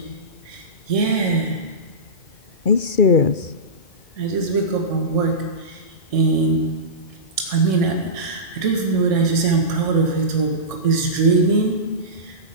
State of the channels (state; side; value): late; right; 1.6 ms